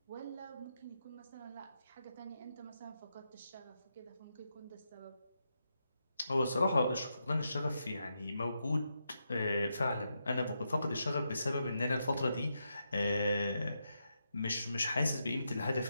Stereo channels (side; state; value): both; inverted; correlation -0.84